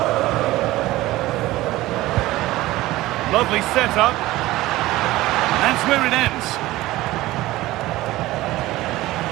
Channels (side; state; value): left; quieter; 17.5 dB